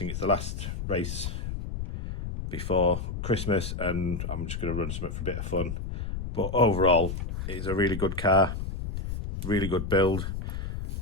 It's the last race before Christmas, and I'm just going to run something for a bit of fun. But overall, it's a really good car, really good build.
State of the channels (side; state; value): left; noise; rumble, 5 dB below the sound